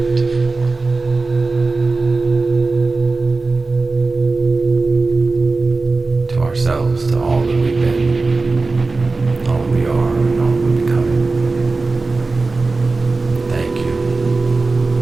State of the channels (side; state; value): left; quieter; 3.7 dB